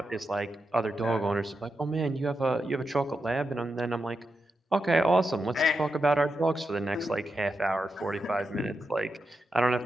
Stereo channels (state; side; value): normal; both; correlation 0.87